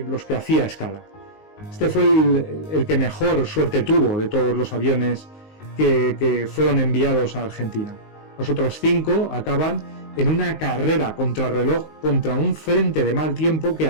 los que hacía escala. Este fue el que mejor suerte tuvo de todos los aviones que fueron enviados a Argentina. Los otros 5 acaban en una carrera contrarreloj contra un frente de mal tiempo que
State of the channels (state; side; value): late; right; 19 ms